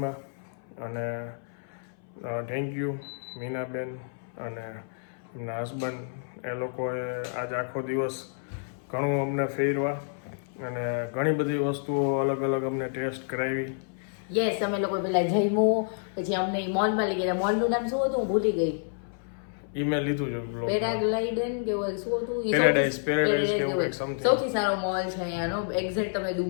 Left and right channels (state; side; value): silent; right; 58 dB below the other